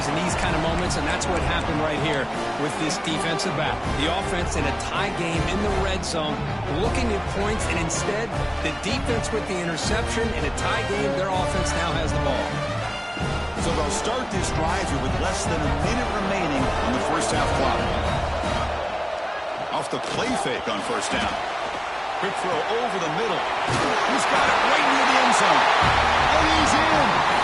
in these kind of moments, and that's what happened right here with this defensive back. The offense in a tie game in the red zone, looking at points, and instead, the defense with the interception. In a tie game, their offense now has the ball. So they'll start this drive here with less than a minute remaining on the 1st half clock. Off the play fake on 1st down. Quick throw over the middle. He's got it right near the end zone. And he's in.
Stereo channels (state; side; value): identical; both; correlation 1.00